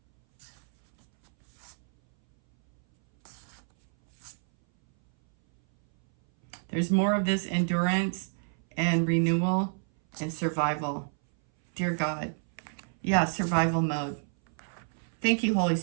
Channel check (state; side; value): silent; left; 59 dB below the other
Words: There's more of this endurance and renewal and survival. Dear God. Yeah, survival mode. Thank you, Holy